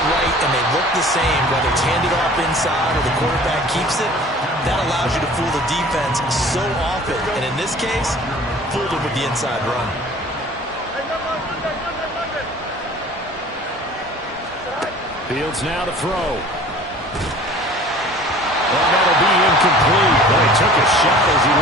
right and they look the same, whether it's handed off inside or the quarterback keeps it, that allows you to fool the defense so often. And in this case, fooled them with the inside run. Fields now to throw. Well, that'll be incomplete. Well, he took a shot as he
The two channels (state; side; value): normal; both; correlation 0.47